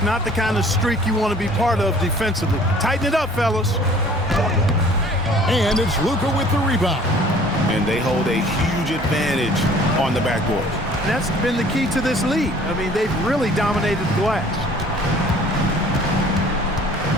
not the kind of streak you want to be part of defensively. Tighten it up, fellas. And it's Luka with the rebound. And they hold a huge advantage on the backboard. That's been the key to this league. I mean, they've really dominated the glass.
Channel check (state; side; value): normal; both; correlation 0.52